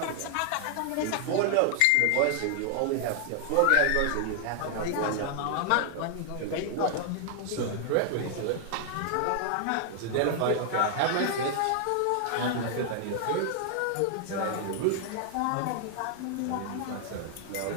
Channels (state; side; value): different; both; correlation 0.00